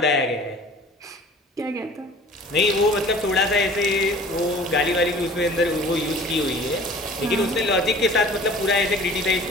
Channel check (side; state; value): both; normal; correlation 0.46